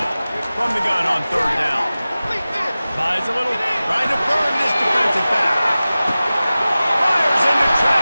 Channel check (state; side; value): inverted; both; correlation -0.97